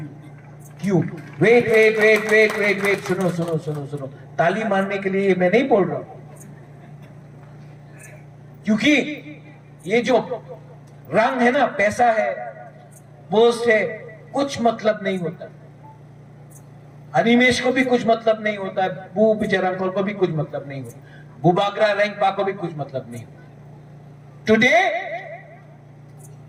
क्यों? वेट. सुनो. ताली मारने के लिए मैं नहीं बोल रहा हूं, क्योंकि ये जो रंग है ना, पैसा है, पोस्ट है, कुछ मतलब नहीं होता. अनिमेश को भी कुछ मतलब नहीं होता है, बू विजय रामखोल को भी कुछ मतलब नहीं होता. बुबाग्रा रेंगपा को भी कुछ मतलब नहीं। Today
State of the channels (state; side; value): identical; both; correlation 1.00